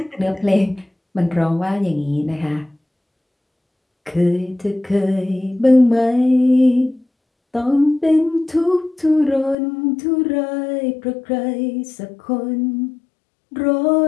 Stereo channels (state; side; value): drops out; right; at 9.6 s